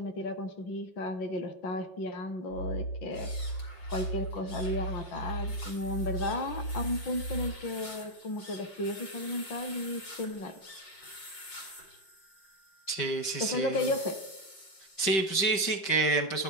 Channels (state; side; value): late; right; 5.2 ms